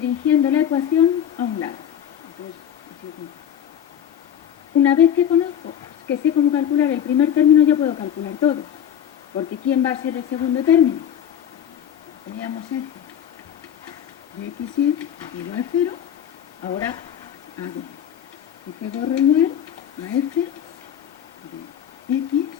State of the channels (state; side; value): quieter; right; 9.6 dB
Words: la ecuación a un lado. Entonces, una vez que conozco, que sé cómo calcular el primer término, yo puedo calcular todo. Porque ¿quién va a ser el segundo término? Teníamos f de x7 igual a 0. Ahora hago f gorro igual a f de x,